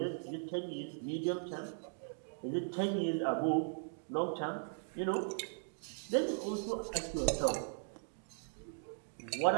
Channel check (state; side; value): silent; left; digital silence